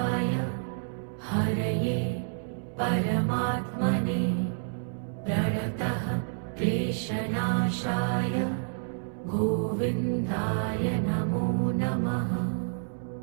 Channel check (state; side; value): silent; left; 59 dB below the other